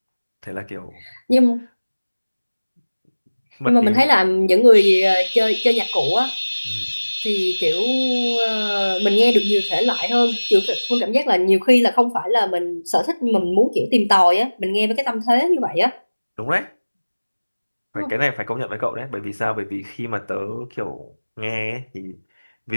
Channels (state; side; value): inverted; both; correlation -1.00